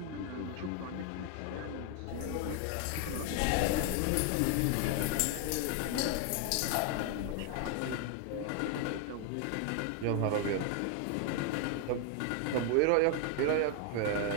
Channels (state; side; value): different; both; correlation 0.01